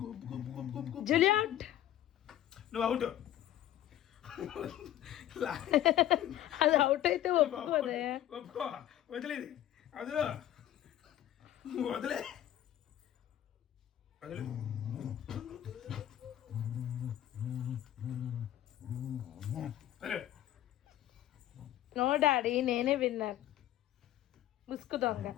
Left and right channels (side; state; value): right; quieter; 12.5 dB